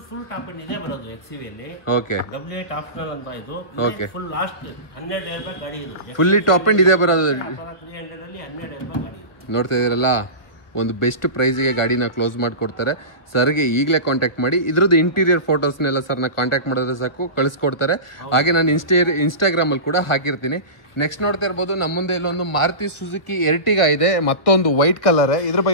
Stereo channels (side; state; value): right; late; 1.3 ms